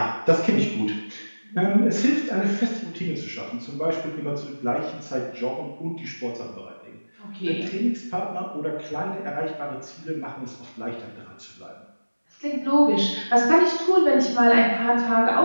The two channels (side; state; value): both; inverted; correlation -1.00